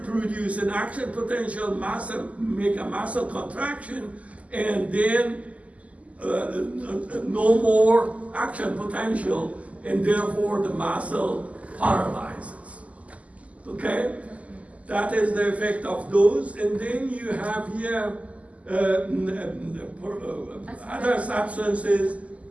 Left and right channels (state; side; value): late; left; 0.069 ms